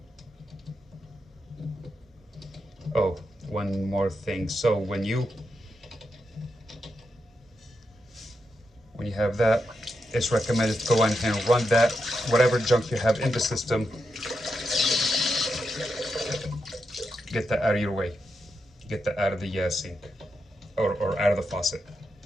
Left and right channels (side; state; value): both; normal; correlation 0.85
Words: Oh, one more thing. So when you have that, it's recommended to go in and run that, whatever junk you have in the system, get that out of your way. Get that out of the sink or out of the faucet.